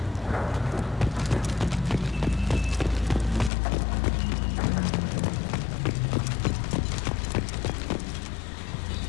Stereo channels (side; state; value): right; drops out; at 3.5 s